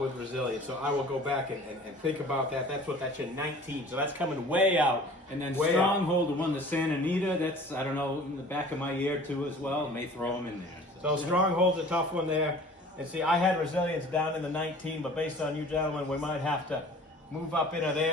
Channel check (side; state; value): both; normal; correlation 0.46